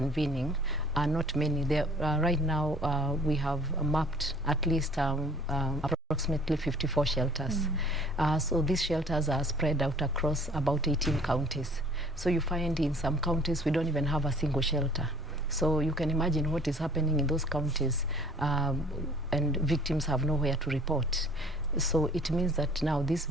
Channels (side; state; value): both; normal; correlation 0.53